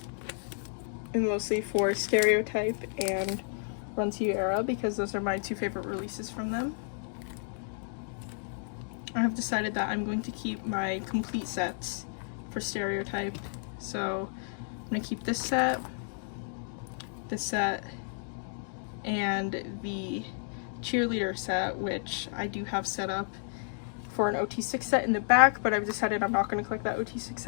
and mostly for Stereotype and Run To You Era, because those are my 2 favorite releases from them. I have decided that I'm going to keep my complete sets for Stereotype. So I'm going to keep this set, and the cheerleader set, which I do have set up for an OT6 set in the back, but I've decided I'm not going to collect that OT6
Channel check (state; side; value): silent; right; digital silence